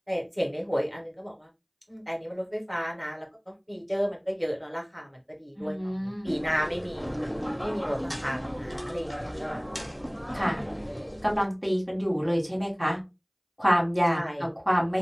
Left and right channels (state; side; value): identical; both; correlation 1.00